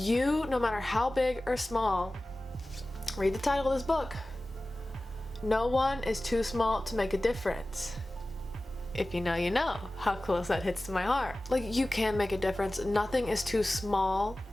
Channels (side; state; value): both; normal; correlation 0.97